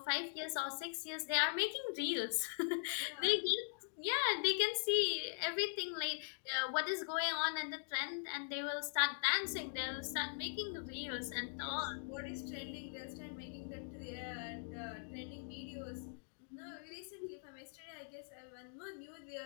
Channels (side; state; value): right; silent; digital silence